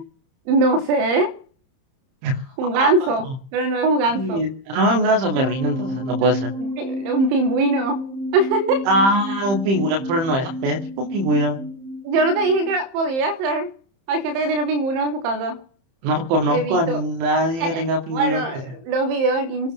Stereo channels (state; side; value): late; left; 30 ms